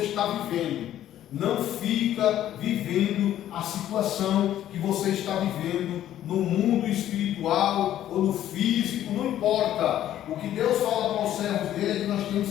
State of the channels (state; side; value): quieter; right; 12.1 dB